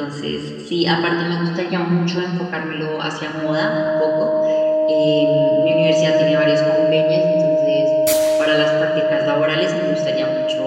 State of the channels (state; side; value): identical; both; correlation 1.00